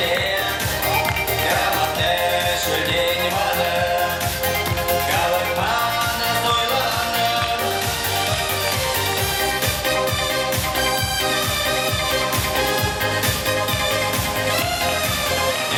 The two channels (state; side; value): identical; both; correlation 1.00